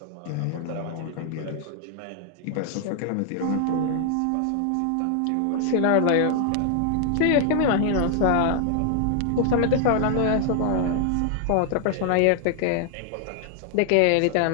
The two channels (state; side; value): different; both; correlation 0.00